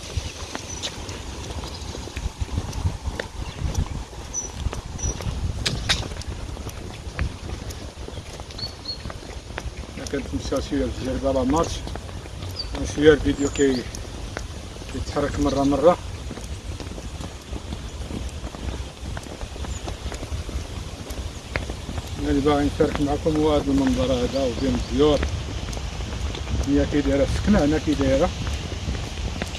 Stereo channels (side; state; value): both; identical; correlation 1.00